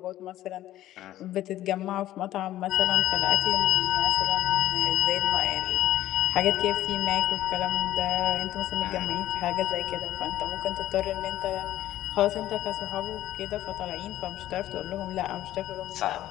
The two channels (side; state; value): right; quieter; 13.9 dB